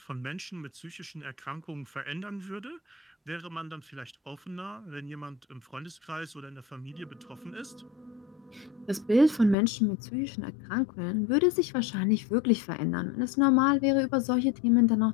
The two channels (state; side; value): drops out; right; at 9.6 s